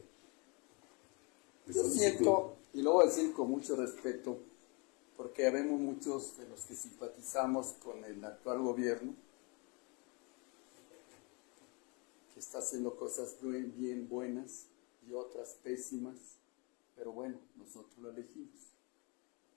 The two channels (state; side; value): quieter; right; 30.9 dB